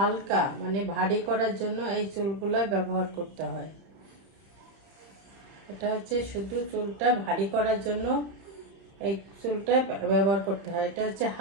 মানে ভারী করার জন্য এই চুলগুলো ব্যবহার করতে হয়। এটা হচ্ছে শুধু চুলটা ভারী করার জন্য এই চুলটা ব্যবহার করতে হয়। এটা হচ্ছে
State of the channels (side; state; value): left; late; 31 ms